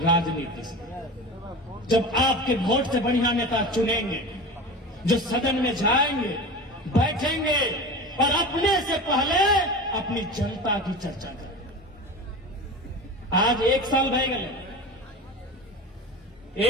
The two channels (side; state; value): both; normal; correlation 0.31